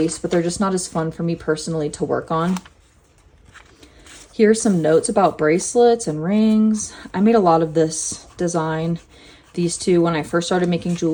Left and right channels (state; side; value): identical; both; correlation 1.00